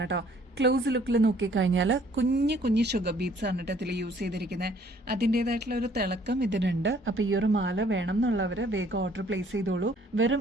കേട്ടോ. ക്ലോസ് ലുക്കിൽ നോക്കിക്കഴിഞ്ഞാൽ കുഞ്ഞു കുഞ്ഞു ഷുഗർ ബീഡ്സ് ആണ് ഇതിൽ യൂസ് ചെയ്തിരിക്കുന്നത്. അതിൻ്റെതായിട്ടുള്ള ഒരു തിളക്കം ഇതിനുണ്ട്. അപ്പൊ ഈ ഒരു മാല വേണം എന്നുള്ളവര് വേഗം ഓർഡർ പ്ലേസ് ചെയ്തോളൂ. വെറും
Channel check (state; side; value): normal; both; correlation 0.60